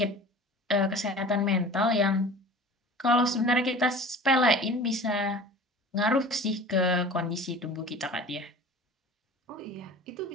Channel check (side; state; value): both; normal; correlation 0.41